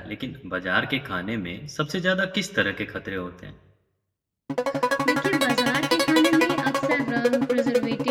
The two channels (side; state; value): both; identical; correlation 1.00